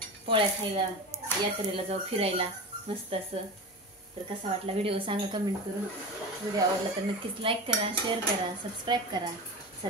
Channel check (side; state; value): both; normal; correlation 0.27